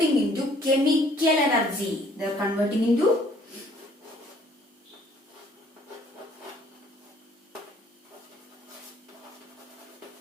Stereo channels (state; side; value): normal; both; correlation 0.59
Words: into chemical energy. They are converting into